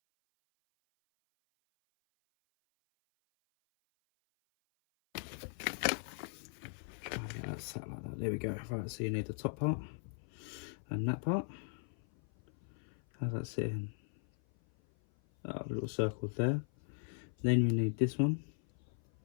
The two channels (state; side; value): silent; right; 52 dB below the other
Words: Try and get that sat like that. There we go. Right, so you need the top part and that part. How's that sitting? Oh, a little circle there. Then you need this one,